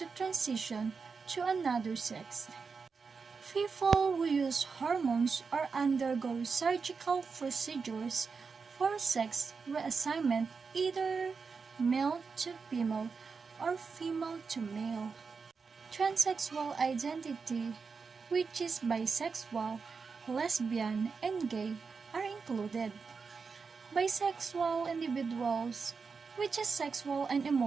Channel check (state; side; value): quieter; left; 5.1 dB